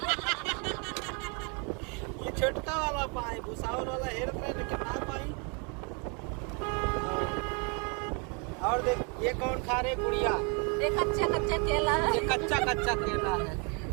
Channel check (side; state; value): left; quieter; 35.3 dB